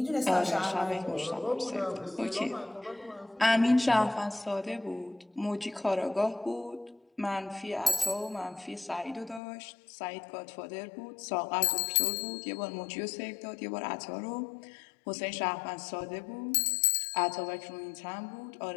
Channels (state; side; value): drops out; right; at 9.4 s